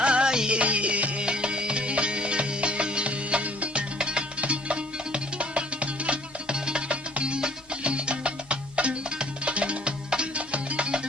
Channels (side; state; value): both; normal; correlation 0.56